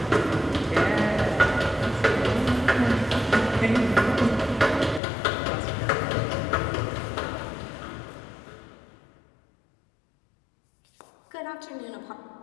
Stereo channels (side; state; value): right; drops out; at 5.0 s